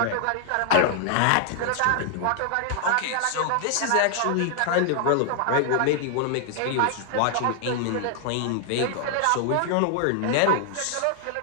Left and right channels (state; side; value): different; both; correlation -0.01